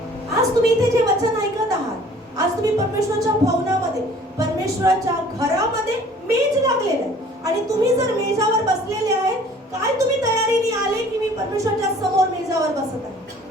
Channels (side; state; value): both; normal; correlation 0.52